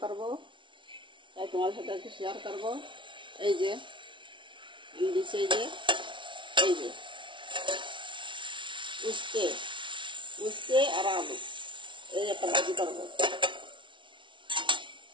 করব তাই তোমাদের সাথে একটু শেয়ার করব। এই যে এই যে উস্তে আর আলু, এই একটা ভাজি করবো,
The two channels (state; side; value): late; left; 0.24 ms